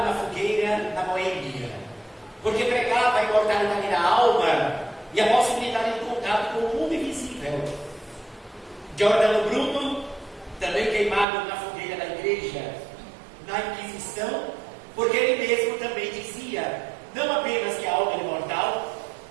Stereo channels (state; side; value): drops out; left; at 11.2 s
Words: na fogueira na Boêmia, porque pregava a imortalidade da alma e a possibilidade de contato com o mundo invisível. Giordano Bruno, também queimado na fogueira da igreja, na Inquisição, porque ele mesmo também dizia, não apenas que a alma era imortal,